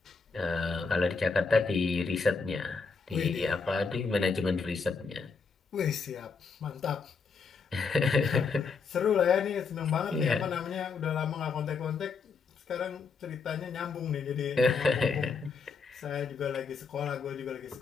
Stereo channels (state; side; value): quieter; right; 4.9 dB